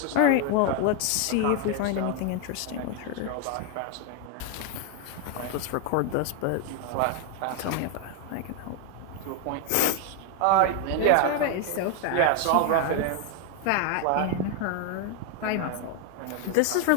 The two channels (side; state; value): both; different; correlation 0.01